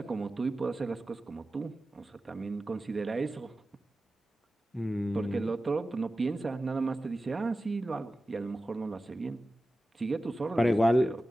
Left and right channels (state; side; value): normal; both; correlation 0.94